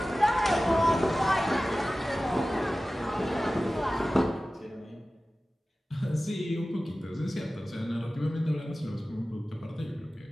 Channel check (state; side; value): normal; both; correlation 0.96